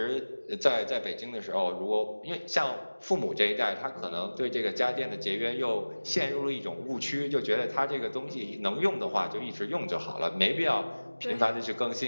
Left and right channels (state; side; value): inverted; both; correlation -1.00